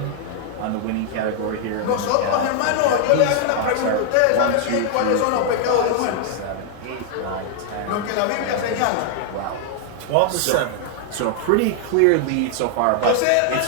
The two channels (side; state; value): both; different; correlation 0.00